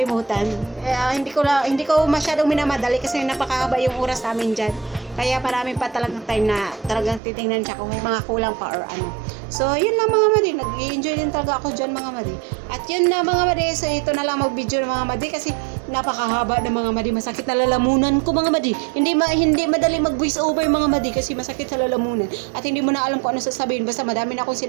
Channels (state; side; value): drops out; left; at 7.2 s